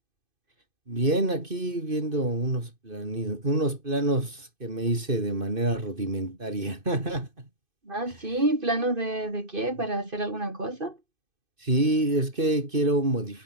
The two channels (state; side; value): late; left; 2.5 ms